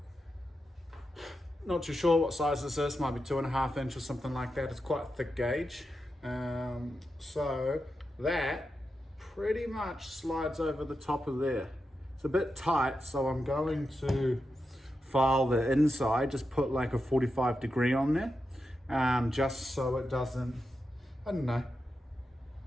not too sure what size this is, might be 2.5 inch or something like that. It's quite a thick gauge. So that pretty much slides over the top of there. It's a bit tight, so I'm going to file the inside, just put like a 45 degree on there, just so it doesn't, I don't know,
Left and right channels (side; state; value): both; normal; correlation 0.88